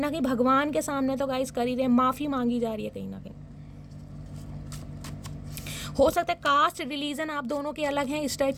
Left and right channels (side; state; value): both; identical; correlation 1.00